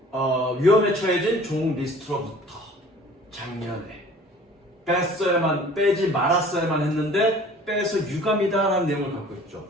위험에 처해진 종 리스트로부터. 작년에 빼지 말았어야만 했는데 빼서 유감이다라는 내용을 갖고 있죠.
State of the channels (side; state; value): both; normal; correlation 0.49